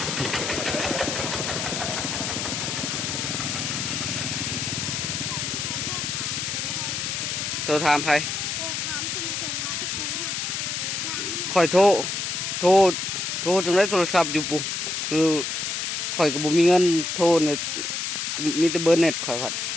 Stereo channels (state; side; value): noise; left; hiss, 2 dB below the sound